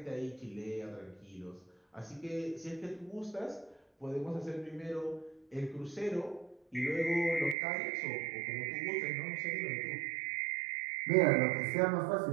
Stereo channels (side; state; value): left; drops out; at 7.6 s